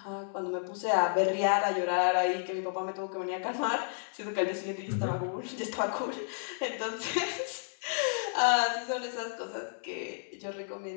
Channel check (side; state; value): right; silent; digital silence